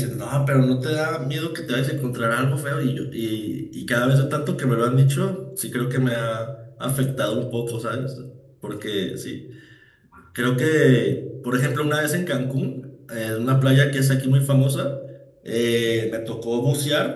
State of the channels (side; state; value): both; identical; correlation 1.00